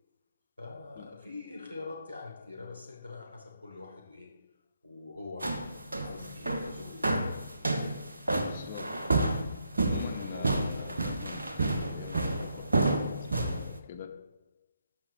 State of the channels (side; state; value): both; inverted; correlation -0.77